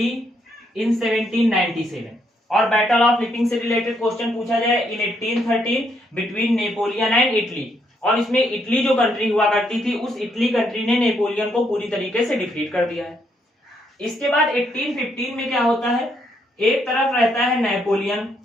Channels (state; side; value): normal; both; correlation 0.74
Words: इन 1797। और बैटल ऑफ लिपिंग से रिलेटेड क्वेश्चन पूछा जाए इन 1813 बिटवीन नेपोलियन एंड इटली, और इसमें इटली जो कंट्री हुआ करती थी, उस इटली कंट्री ने नेपोलियन को पूरी तरीके से डिफीट कर दिया है। इसके बाद 1815 में क्या होता है, एक तरफ रहता है नेपोलियन,